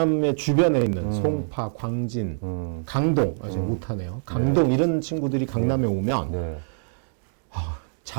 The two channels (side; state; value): left; silent; digital silence